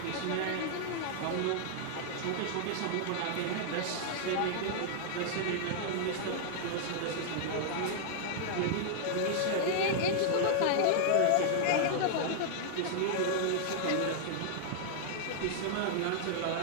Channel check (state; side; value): different; both; correlation -0.01